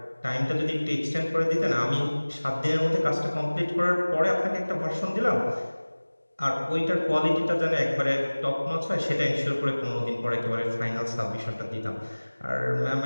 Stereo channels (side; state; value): both; inverted; correlation -1.00